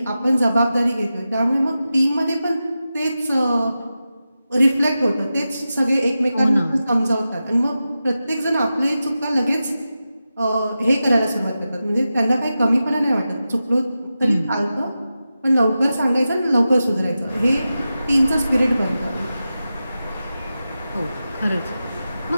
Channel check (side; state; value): both; inverted; correlation -0.92